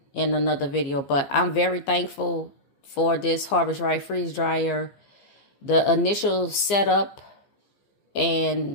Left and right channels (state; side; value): late; right; 15 ms